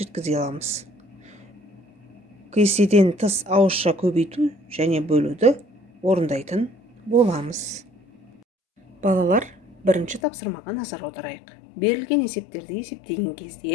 жеткізе аламыз. Кестеден тыс ауызша көбейту және бөлуді орындайтын боламыз. Балалар, бірінші тапсырмаға назар аударайық. Берілген есептерді есептеген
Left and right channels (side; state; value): right; drops out; at 10.2 s